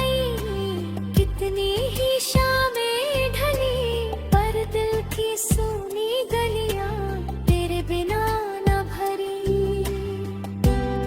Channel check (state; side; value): identical; both; correlation 1.00